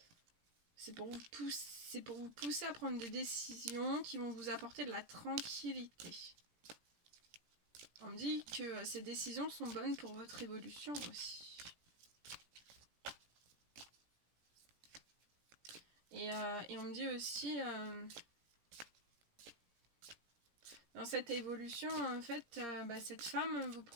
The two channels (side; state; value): left; late; 17 ms